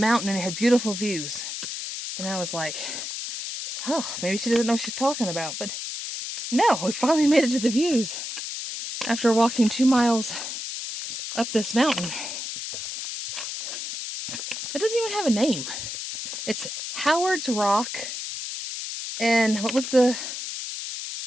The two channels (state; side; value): noise; left; hiss, 6 dB below the sound